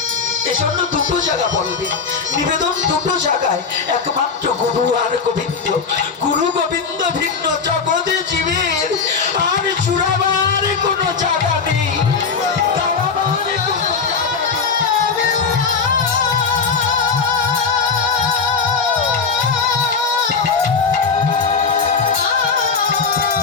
এজন্য দুটো জায়গা বলবে, নিবেদন দুটো জায়গায়, একমাত্র গুরু আর গোবিন্দ। গুরু গোবিন্দ ভিন্ন জগতে জীবের আর চূড়াবার কোনো জায়গা নেই, দাঁড়াবার কোনো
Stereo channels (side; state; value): right; quieter; 5.3 dB